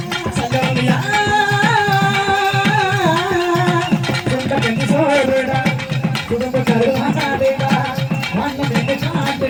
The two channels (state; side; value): identical; both; correlation 1.00